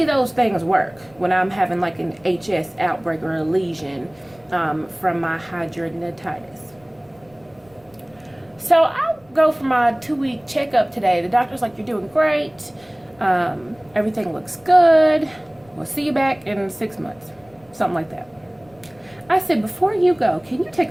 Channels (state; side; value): noise; left; rumble, 29 dB below the sound